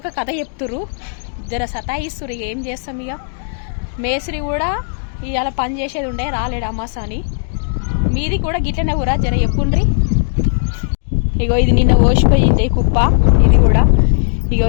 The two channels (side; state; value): right; silent; digital silence